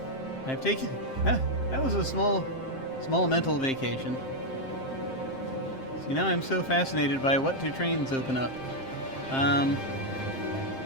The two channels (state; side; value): late; right; 7.6 ms